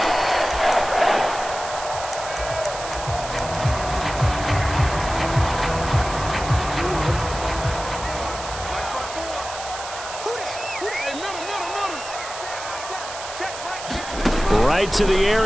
Right to the air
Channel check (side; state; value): right; noise; hiss, 10 dB below the sound